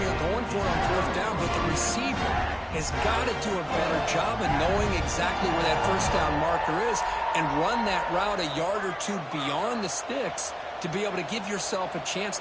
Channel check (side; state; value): both; identical; correlation 1.00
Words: here going for it on fourth down, but the receiver has got to do a better job of knowing exactly where that first down marker is and run that route a yard or two beyond the sticks to be able to give yourself a chance